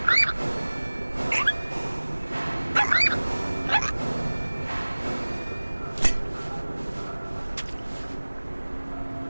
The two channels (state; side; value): inverted; both; correlation -1.00